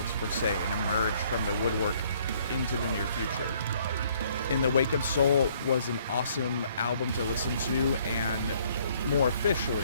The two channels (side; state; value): both; inverted; correlation -0.63